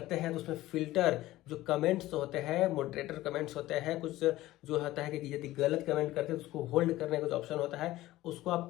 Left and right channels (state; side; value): quieter; right; 16.5 dB